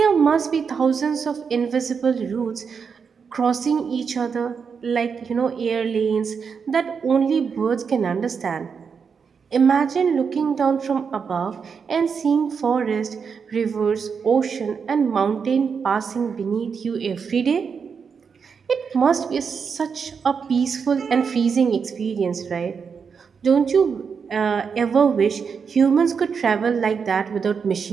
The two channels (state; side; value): quieter; left; 6.1 dB